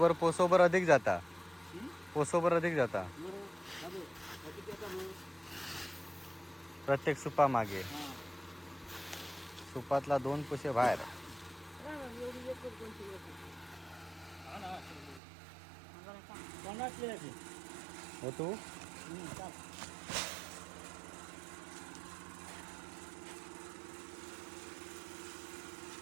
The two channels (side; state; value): left; drops out; at 15.2 s